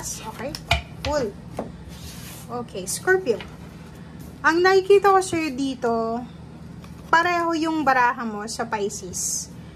Okay, cool. Okay, Scorpio. Ang nakikita ko sa'yo dito, pareho yung baraha mo sa Pisces.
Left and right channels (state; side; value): identical; both; correlation 1.00